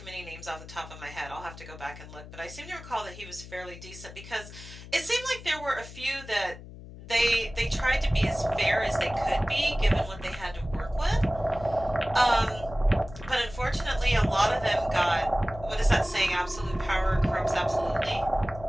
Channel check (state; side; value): noise; left; hum, 15 dB below the sound